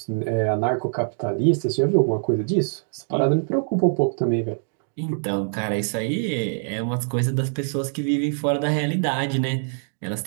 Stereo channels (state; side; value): silent; left; 63 dB below the other